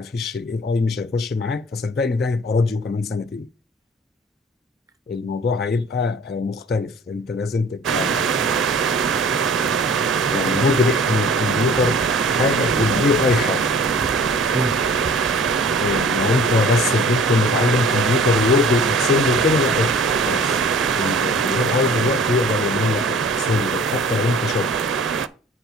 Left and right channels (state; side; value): normal; both; correlation 0.48